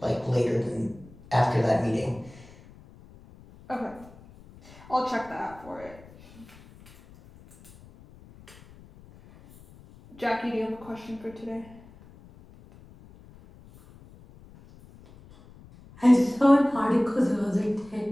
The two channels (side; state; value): left; noise; rumble, 22 dB below the sound